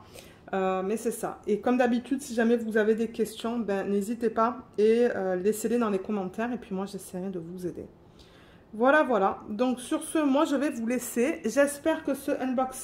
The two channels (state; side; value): identical; both; correlation 1.00